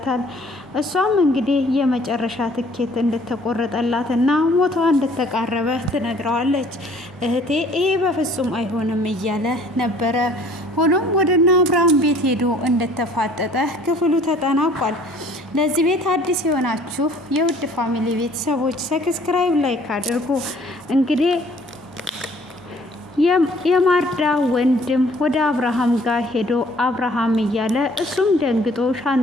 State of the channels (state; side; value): normal; both; correlation 0.56